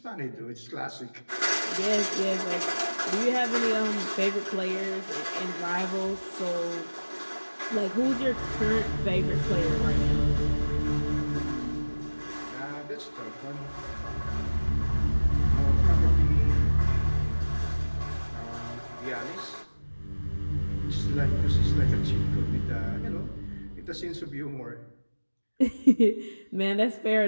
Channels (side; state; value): both; inverted; correlation -1.00